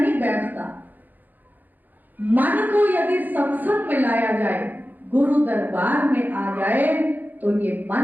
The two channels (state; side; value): late; left; 0.085 ms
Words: बैठता। मन को यदि सत्संग में लाया जाए, गुरु दरबार में आ जाए, तो ये